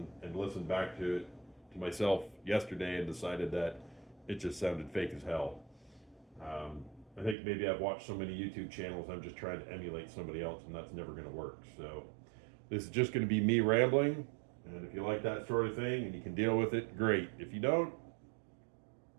listened back to it to myself yesterday and decided that it just sounded fake as hell. I think maybe I've watched so many YouTube channels, I'm just trying to emulate somebody else, and that's never going to work. So this is just going to be me rambling, and if you like that sort of thing and you can deal with it, great. If you don't,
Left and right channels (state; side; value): drops out; left; at 7.4 s